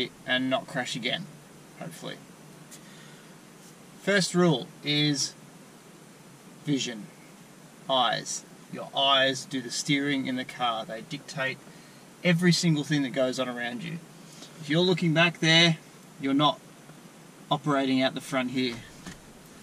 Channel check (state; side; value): identical; both; correlation 1.00